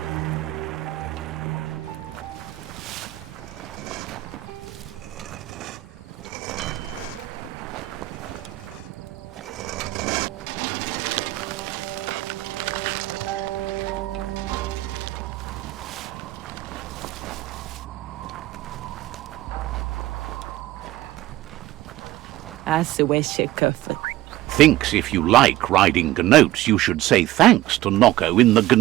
Thinks if you like riding gnotes, you should say thanks to Nocco in the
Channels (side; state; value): left; quieter; 16.1 dB